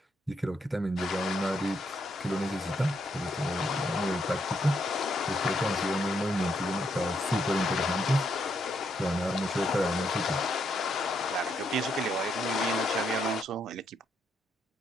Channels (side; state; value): both; normal; correlation 0.77